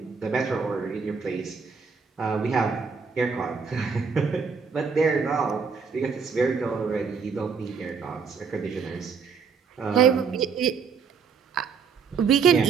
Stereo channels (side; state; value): left; quieter; 5.7 dB